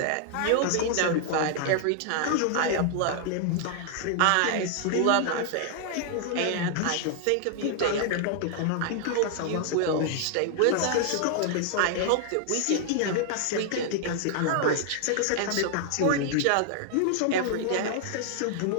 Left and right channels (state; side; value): different; both; correlation 0.00